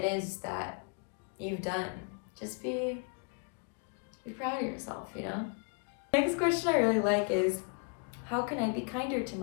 is that you've done, just be proud of yourself, you know? Next question I really like is, how can I be kinder to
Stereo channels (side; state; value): right; quieter; 37.3 dB